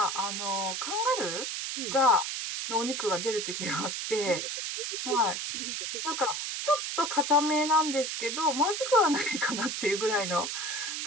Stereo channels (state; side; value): noise; right; hiss, 3 dB below the sound